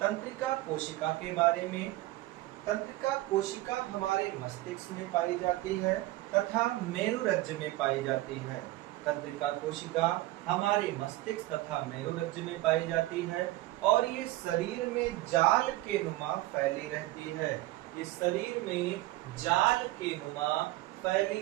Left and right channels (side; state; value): left; quieter; 17.7 dB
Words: कोशिका के बारे में। तंत्रिका कोशिका हमारे मस्तिष्क में पाई जाती है तथा मेरुरज्ज में पाई जाती है। तंत्रिका कोशिका हमारे मस्तिष्क तथा मेरुरज्ज में पाई जाती है और ये शरीर में जाल के नुमा फैली रहती है। इस शरीर में जाल के नुमा